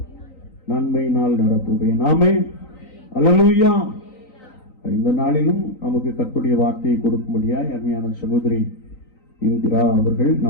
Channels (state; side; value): late; right; 3.9 ms